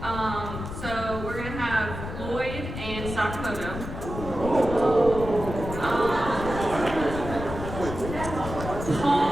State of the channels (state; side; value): noise; left; rumble, 8 dB below the sound